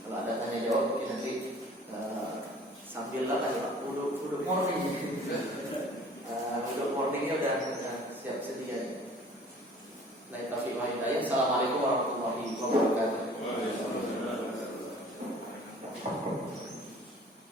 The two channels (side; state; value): both; normal; correlation 0.50